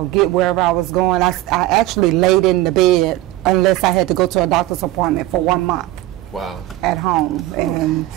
get wherever I was going. I actually laid in the bed unless I had to go to a doctor's appointment for 1 month. Wow. At home. And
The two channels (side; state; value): left; quieter; 16.2 dB